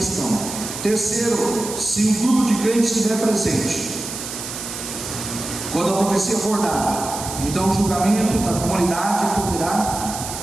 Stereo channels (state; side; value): noise; right; hiss, 8 dB below the sound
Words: Terceiro, se um grupo de crentes estiver presente, quando a profecia for dada, então o julgamento da comunidade